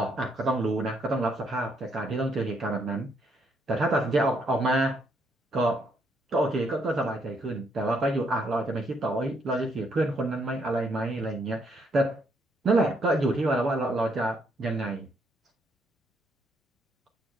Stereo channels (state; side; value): normal; both; correlation 0.73